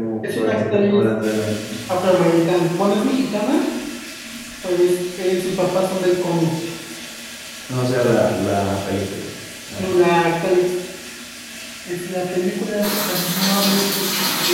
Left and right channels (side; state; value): both; identical; correlation 1.00